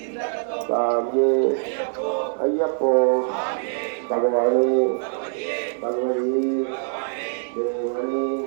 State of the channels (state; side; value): silent; left; digital silence